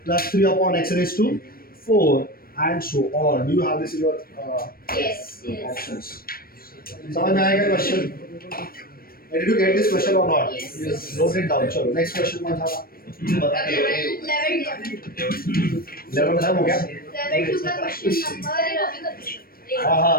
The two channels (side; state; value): right; late; 0.43 ms